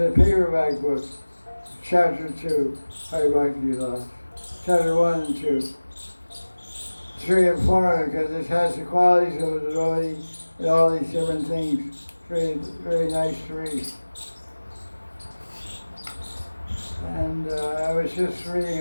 paperback book. Chapter 2, Hari Katha. Chapter 1 and 2. It's very informative because it has the qualities of a devotee and all these different things. Very, very nice to read. And I was just reading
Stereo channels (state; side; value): inverted; both; correlation -1.00